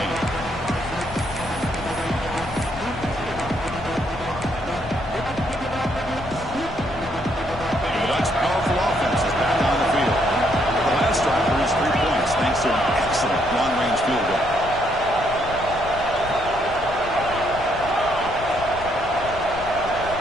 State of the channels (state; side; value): noise; left; rumble, 13 dB below the sound